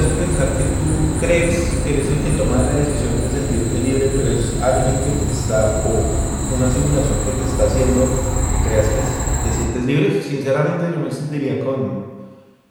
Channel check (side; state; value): both; identical; correlation 1.00